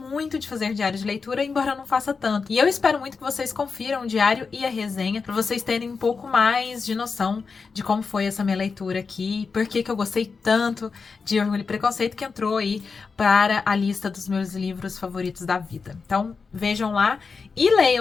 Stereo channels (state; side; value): quieter; right; 5.0 dB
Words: de fazer diário de leitura, embora eu não faça tanto. E eu espero muito que vocês confiram o diário e a resenha, pra vocês terem um pouco mais de noção de como foi essa minha leitura aqui, por que eu gostei tanto de Orgulho e Preconceito, que entrou aí para a lista dos meus livros favoritos da vida. Então, vejam lá e